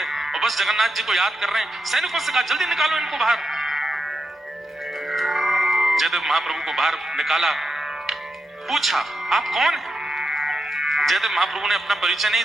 और बस जगन्नाथ जी को याद कर रहे हैं। सैनिकों से कहा जल्दी निकालो इनको बाहर। जयदेव महाप्रभु को बाहर निकाला, पूछा आप कौन हैं? जयदेव महाप्रभु ने अपना परिचय नहीं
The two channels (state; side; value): normal; both; correlation 0.86